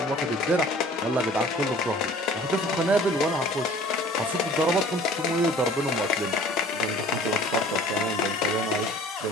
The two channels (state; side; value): normal; both; correlation 0.49